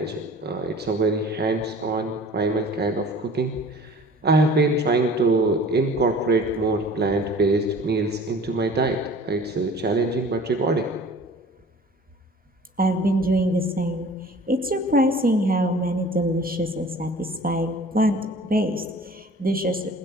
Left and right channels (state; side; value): normal; both; correlation 0.46